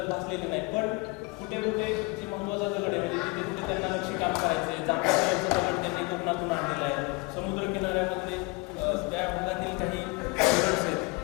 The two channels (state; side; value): quieter; right; 27.6 dB